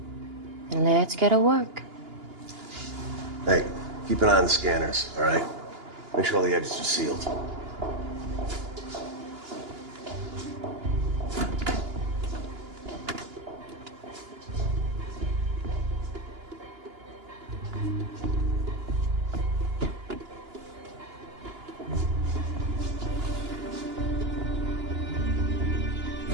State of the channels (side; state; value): left; late; 2.9 ms